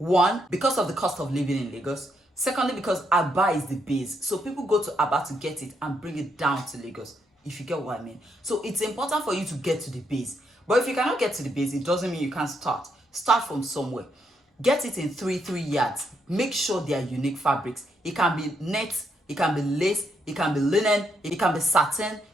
because of the cost of living in Lagos. Secondly, because Aba is the base. So people go to Aba to get it and bring it down to Lagos, if you get what I mean. So it's important for you to get to the base. But if you cannot get to the base, it doesn't mean you can't start. Start from somewhere. Get it in 3 yards. Make sure they are unique fabrics. It can be net, it can be lace, it can be linen, it can be satin,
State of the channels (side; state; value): both; normal; correlation 0.77